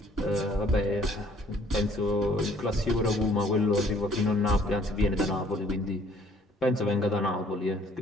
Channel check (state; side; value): normal; both; correlation 0.60